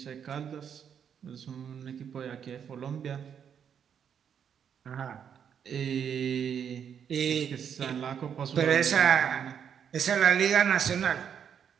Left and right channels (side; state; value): left; quieter; 8.0 dB